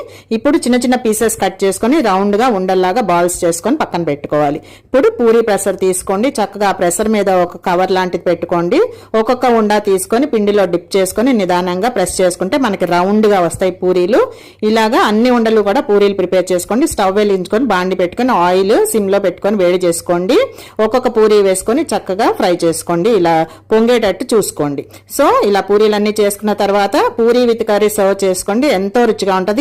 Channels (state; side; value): identical; both; correlation 1.00